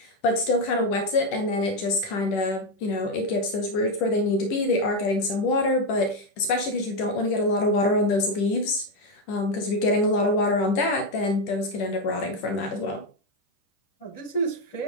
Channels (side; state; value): right; late; 10 ms